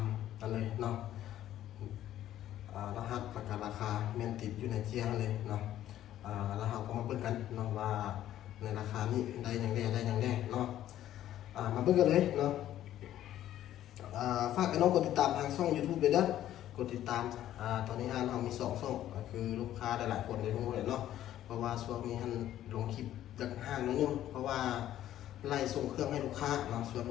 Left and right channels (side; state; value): right; quieter; 12.4 dB